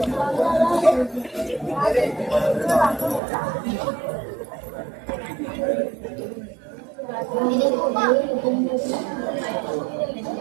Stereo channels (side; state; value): left; drops out; at 3.2 s